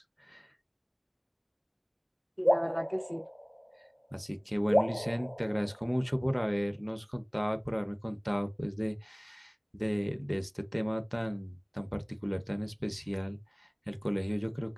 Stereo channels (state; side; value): identical; both; correlation 1.00